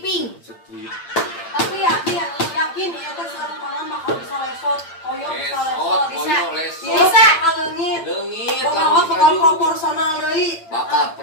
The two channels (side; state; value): right; late; 8.8 ms